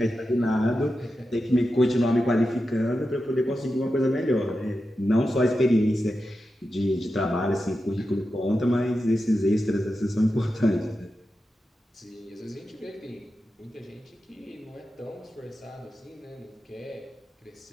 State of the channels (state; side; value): normal; both; correlation 0.90